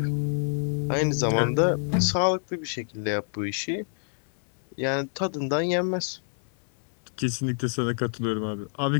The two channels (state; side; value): silent; right; 60 dB below the other